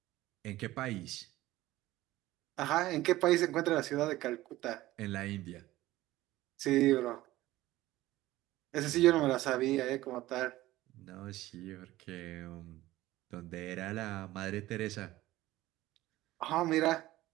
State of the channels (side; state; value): left; quieter; 16.6 dB